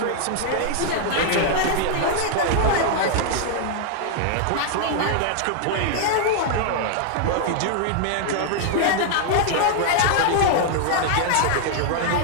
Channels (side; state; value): both; different; correlation -0.01